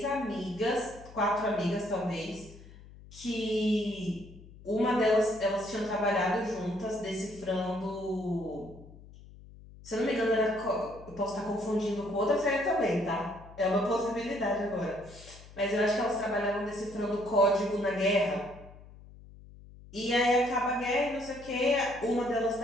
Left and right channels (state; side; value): noise; left; hum, 19 dB below the sound